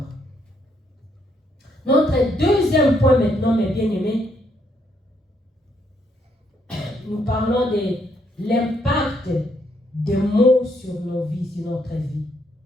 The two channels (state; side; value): normal; both; correlation 0.73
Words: Notre deuxième point maintenant, mes bien-aimés, nous parlons de l'impact des mots sur nos vies, sur notre vie.